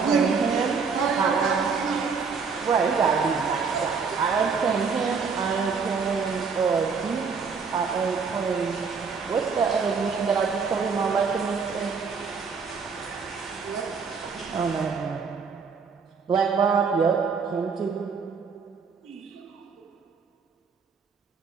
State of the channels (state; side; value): quieter; left; 5.4 dB